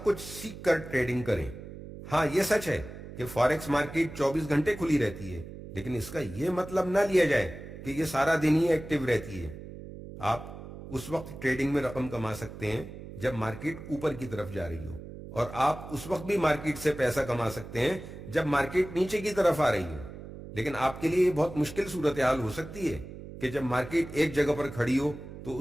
کچھ سیکھ کر ٹریڈنگ کریں۔ ہاں، یہ سچ ہے کہ فاریکس مارکیٹ 24 گھنٹے کھلی رہتی ہے، لیکن اس کا یہ مطلب نہ لیا جائے کہ یہ سارا دن ہی ایکٹیو رہتی ہے۔ آپ اس وقت ٹریڈنگ میں رقم کما سکتے ہیں جب مارکیٹ اوپر کی طرف جا رہی ہو، اور آپ اس وقت بھی مارکیٹ سے پیسہ کما سکتے ہیں جب مارکیٹ نیچے کی طرف آ رہی ہو۔ لیکن آپ کے لیے یہ بہت مشکل صورتحال ہو سکتی ہے کہ جب مارکیٹ ایک جگہ پر کھڑی ہو تو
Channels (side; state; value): right; noise; hum, 13 dB below the sound